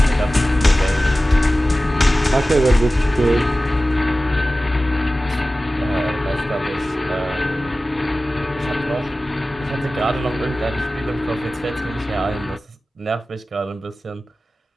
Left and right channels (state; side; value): normal; both; correlation 0.96